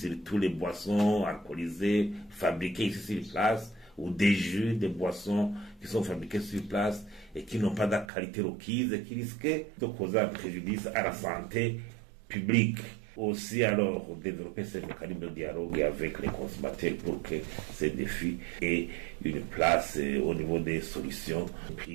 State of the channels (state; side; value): drops out; left; at 8.1 s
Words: les boissons alcoolisées fabriquées ici sur place ou des jus, des boissons qui sont fabriquées sur place et qui n'ont pas de qualité requise et qui risquent de causer un préjudice à la santé publique. Aussi, alors, développer ces mécanismes de dialogue avec les consommateurs pour que ces défis aient une place au niveau des solutions